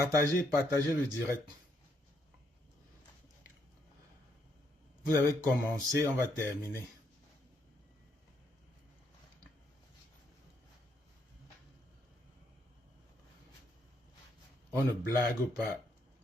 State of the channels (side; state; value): both; normal; correlation 0.74